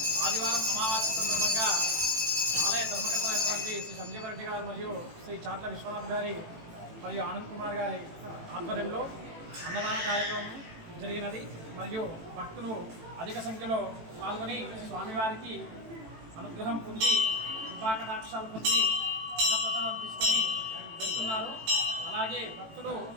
ఆదివారం అమావాస్య సందర్భంగా ఆలయ ధర్మకర్త అయినటువంటి శ్రీ సంజీవరెడ్డి గారు మరియు శ్రీ చాట్ల విశ్వనాథ్ గారి మరియు ఆనంద్ కుమార్ గారి ఆధ్వర్యంలో అన్నదాన కార్యక్రమం జరిగినది. మరియు భక్తులు అధిక సంఖ్యలో పాల్గొని స్వామివారికి అనుగ్రహం పొంది కృపాకటాక్షాలు పొంది అన్నప్రసాదం తీసుకొని వెళ్తున్నారు. అలాగే భక్తులు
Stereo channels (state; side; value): late; left; 18 ms